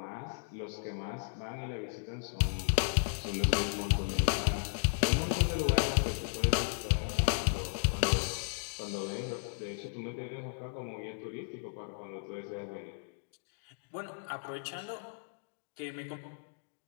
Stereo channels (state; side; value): silent; right; digital silence